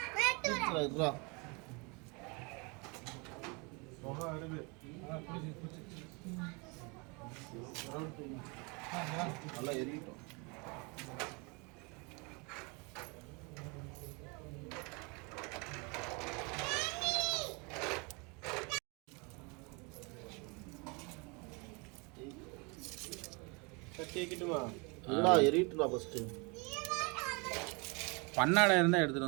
புகை வருது. நல்லா எரியிட்டோம். கேட்கட்டுமா? இல்லடா எரியிட்டுடா ஃபர்ஸ்ட். பண்ணாடை இருந்தால் எடுத்துகிட்டு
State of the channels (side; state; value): left; quieter; 30.3 dB